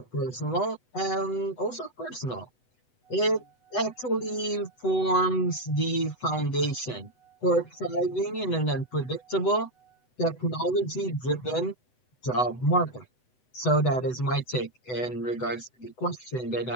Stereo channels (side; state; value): right; late; 8.0 ms